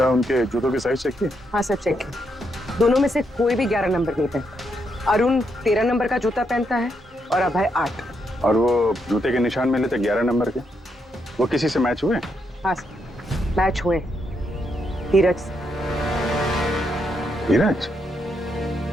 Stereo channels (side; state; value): both; normal; correlation 0.79